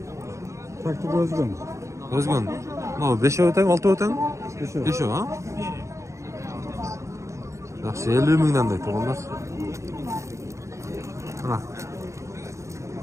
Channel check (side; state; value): left; late; 0.14 ms